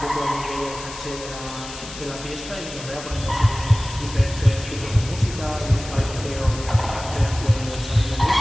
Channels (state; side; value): noise; left; hiss, 12 dB below the sound